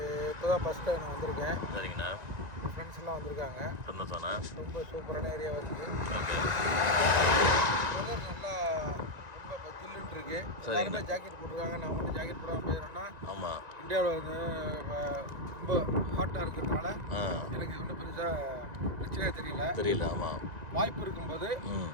இப்போ தான் ஃபஸ்ட் டைம் வந்திருக்கேன். சரிங்கண்ணா. ஃப்ரெண்ட்ஸ் எல்லாம் வந்திருக்காங்க. சந்தோஷம்ண்ணா. ரொம்ப சூப்பரான ஏரியா இருக்குது. ஓகே. நல்லா ரொம்ப ஜில்லுன்னு இருக்குது. சரிங்கண்ணா. ஜாக்கெட் போட்டிருக்காங்க. நான் மட்டும் ஜாக்கெட் போடாமல் போயிடறேன்னா ஆமாம், இந்தியாவில் ரொம்ப ஹாட்டாக இருக்கிறதுனால எனக்கு ஒன்றும் பெருசாக பிரச்சனையாக தெரியல. ஆமாம். வாய்ப்பு இருக்கும்போது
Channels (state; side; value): late; left; 1.9 ms